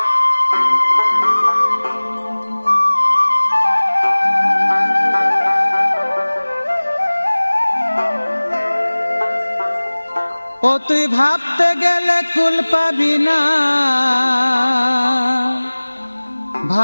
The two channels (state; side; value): inverted; both; correlation -1.00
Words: তুই ভাবতে গেলে কুল পাবি না,